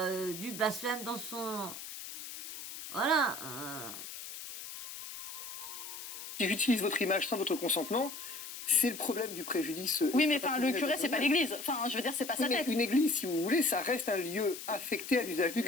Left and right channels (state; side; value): noise; left; hiss, 10 dB below the sound